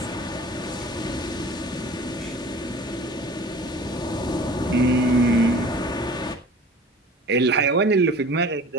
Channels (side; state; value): both; normal; correlation 0.43